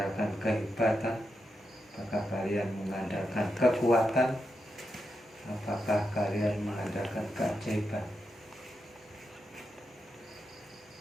kehebatan? Apakah kalian mengandalkan kekuatan? Apakah kalian mengandalkan keajaiban?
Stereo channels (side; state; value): both; normal; correlation 0.86